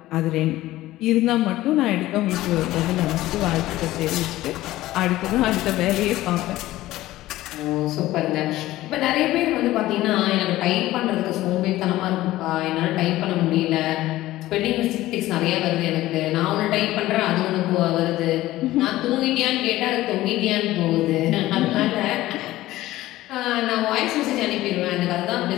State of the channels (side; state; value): right; quieter; 16.2 dB